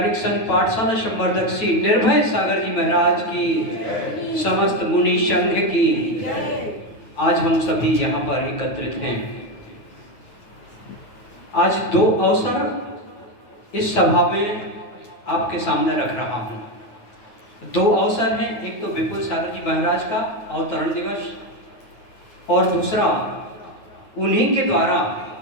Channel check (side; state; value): right; late; 9.4 ms